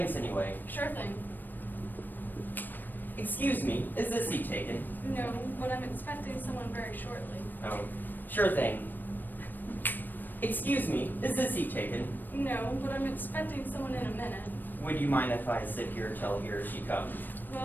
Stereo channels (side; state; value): right; late; 0.091 ms